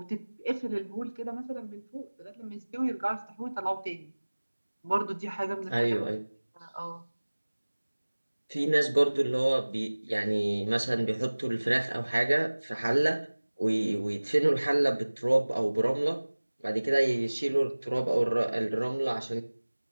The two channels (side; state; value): both; inverted; correlation -1.00